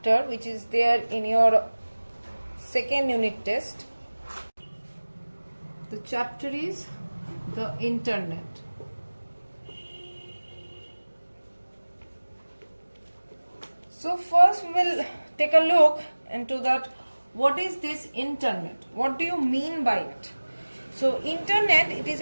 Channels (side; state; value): both; inverted; correlation -1.00